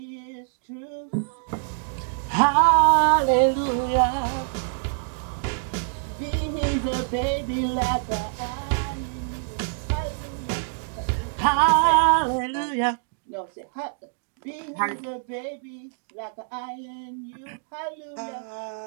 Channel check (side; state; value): left; silent; digital silence